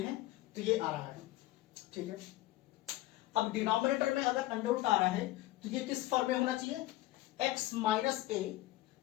हैं तो ये आ रहा है, ठीक है। अब डिनोमिनेटर में अगर अंडर रूट आ रहा है तो ये किस फॉर्म में होना चाहिए, x - a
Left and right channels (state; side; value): quieter; right; 16.8 dB